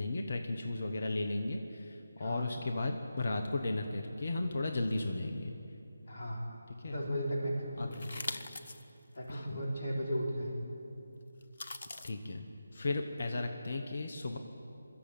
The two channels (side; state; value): both; inverted; correlation -0.90